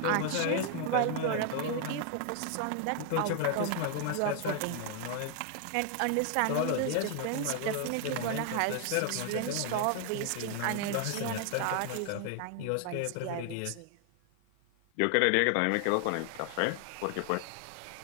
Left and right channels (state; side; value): different; both; correlation 0.00